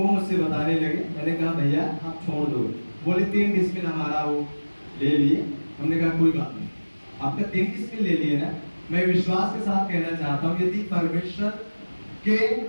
मुझसे बताने लगे। मैंने कहा भैया आप छोड़ दो, बोले 3 डिसमिल हमारा वो ले लिए। हमने कहा कोई बात नहीं, आपका 3 डिसमिल ले लिए ना। मैं विश्वास के साथ कहना चाहता हूँ, यदि परमेश्वर के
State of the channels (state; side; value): inverted; both; correlation -1.00